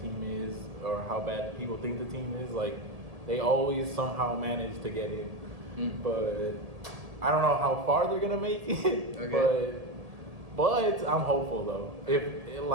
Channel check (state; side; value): late; left; 1.8 ms